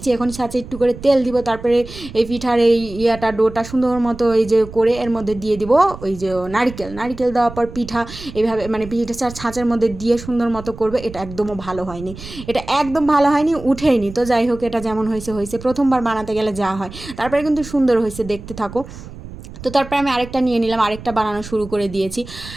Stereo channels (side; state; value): right; noise; rumble, 14 dB below the sound